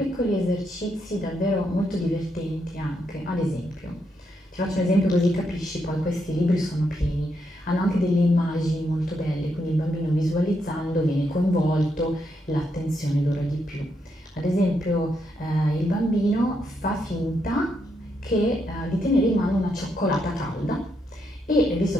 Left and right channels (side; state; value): both; normal; correlation 0.79